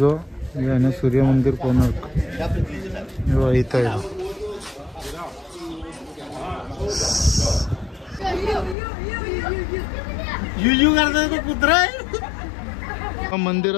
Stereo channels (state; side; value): drops out; right; at 8.8 s